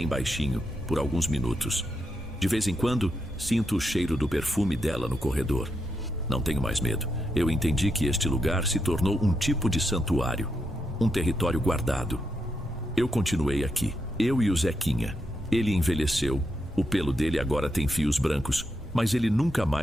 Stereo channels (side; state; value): both; normal; correlation 0.83